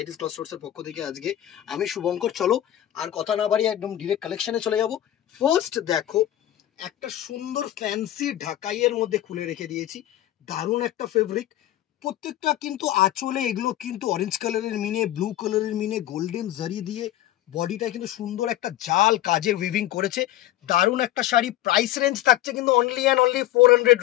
ক্লথ স্টোর্সের পক্ষ থেকে। আজকে আমি শুভঙ্কর, চলো আর কথা না বাড়িয়ে একদম ডিরেক্ট কালেকশনে চলে যাব। ফার্স্ট দেখো, একটা সুন্দর ফ্যান্সি ঢাকাইয়ের মধ্যে খুলে রেখে দিয়েছি, দারুণ একটা ফেব্রিক। প্রত্যেকটা কিন্তু আঁচলে এগুলো কিন্তু অরেঞ্জ কালারের মিনে, ব্লু কালারের মিনে, গোল্ডেন জারি দিয়ে বডিটা কিন্তু সুন্দর একটা জাল কাজের উইভিং করেছে। দারুণ একটা শাড়ি। প্রাইস রেঞ্জ থাকছে কিন্তু অনলি অ্যান্ড অনলি 400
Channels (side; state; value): right; quieter; 13.4 dB